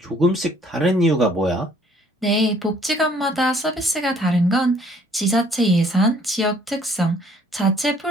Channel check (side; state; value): both; normal; correlation 0.60